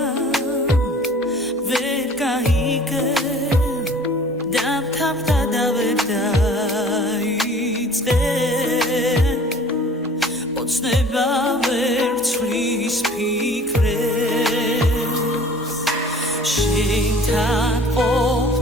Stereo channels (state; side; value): normal; both; correlation 0.49